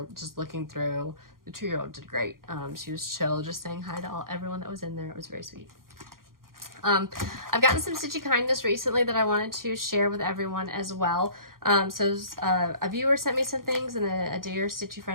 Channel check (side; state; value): left; late; 0.92 ms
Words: just looking through. The 2-year-old did great. She was chill, just saying hi to everyone that was in there. It was very sweet. I've gotten some stitchy kindness recently that I wanted to share with everyone as well. A viewer sent me some things, and a dear stitchy